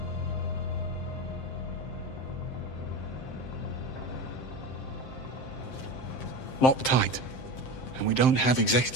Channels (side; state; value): right; late; 7.7 ms